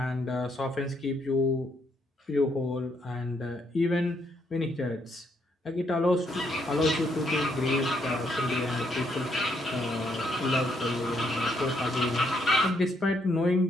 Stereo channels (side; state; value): both; normal; correlation 0.74